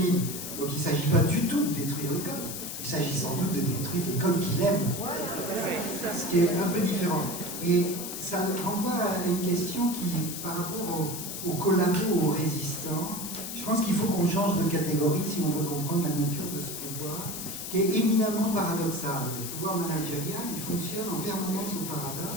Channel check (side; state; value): left; noise; hiss, 7 dB below the sound